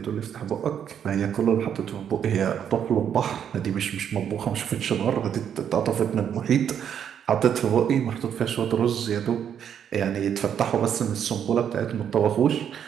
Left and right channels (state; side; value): quieter; left; 8.7 dB